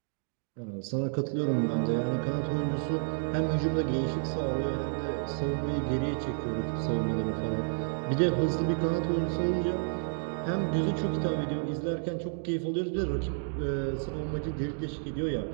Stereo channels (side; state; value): left; silent; digital silence